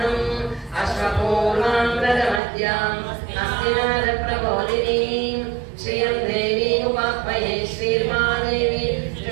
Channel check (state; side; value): drops out; left; at 2.4 s